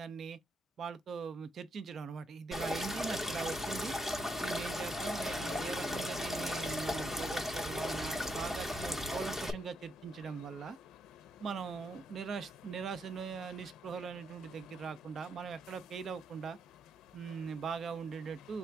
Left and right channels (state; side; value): normal; both; correlation 0.78